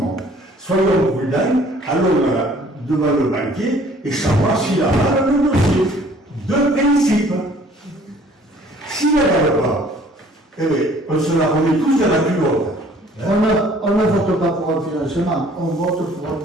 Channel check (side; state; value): both; normal; correlation 0.56